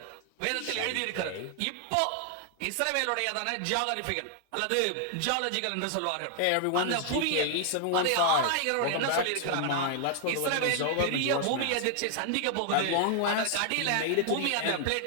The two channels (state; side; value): different; both; correlation 0.00